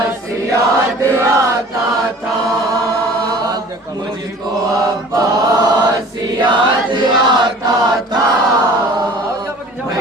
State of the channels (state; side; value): normal; both; correlation 0.46